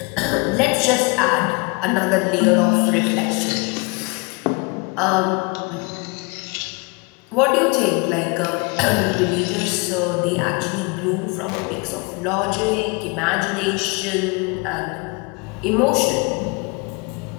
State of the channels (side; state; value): right; quieter; 30.0 dB